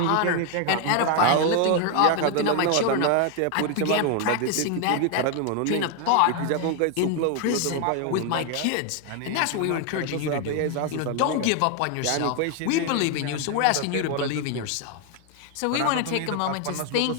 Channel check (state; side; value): different; both; correlation 0.01